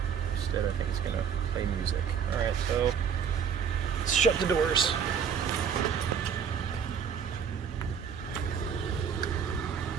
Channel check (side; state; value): left; quieter; 7.3 dB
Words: Instead, I think it's going to play music. Alright, so let's shut the doors.